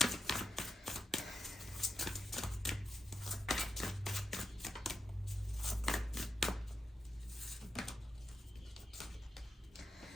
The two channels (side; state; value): both; normal; correlation 0.87